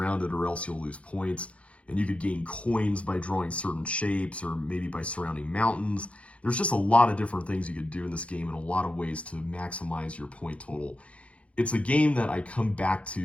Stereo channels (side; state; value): right; late; 0.063 ms